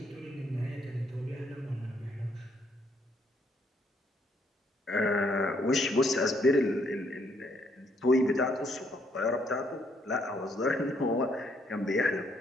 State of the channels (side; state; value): both; normal; correlation 0.70